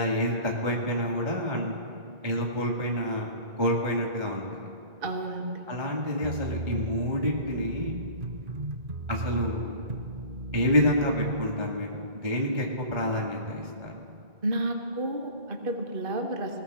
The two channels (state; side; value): late; left; 1.9 ms